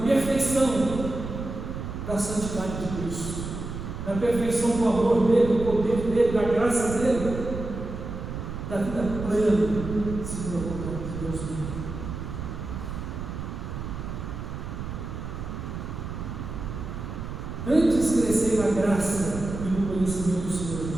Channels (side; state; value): right; noise; rumble, 7 dB below the sound